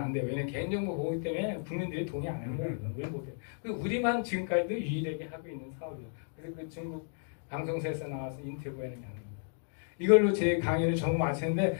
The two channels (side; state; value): right; silent; digital silence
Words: 돼요. 왜냐면 개인정보 보호 때문에 국민들이 동의 안 하는 거예요. 왜 못해요? 우리만 지금까지도 유일하게 하고 있는 사업이에요. 그래서 그 중국 방송사에서 나와서 인터뷰하는 게 아닙니다. 이걸로 제 강의를 전부 마치는데